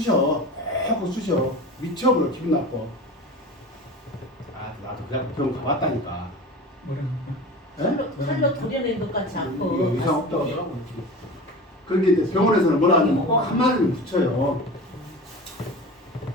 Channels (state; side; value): normal; both; correlation 0.33